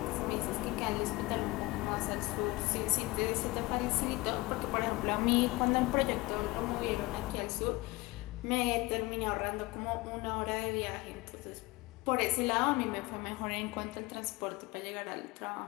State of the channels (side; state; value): right; quieter; 21.9 dB